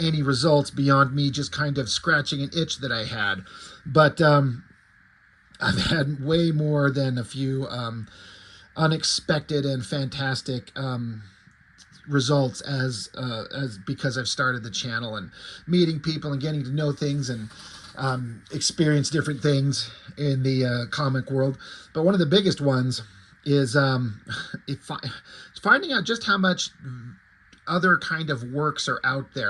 any results beyond me just kind of scratching an itch that I had. But I've had way more than a few unexpected and fantastic results as because I've started the channel and meeting people and getting to know things and experience different things in the comic world. But one of the biggest ones is finding out just how much other kind of works are out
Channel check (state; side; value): identical; both; correlation 1.00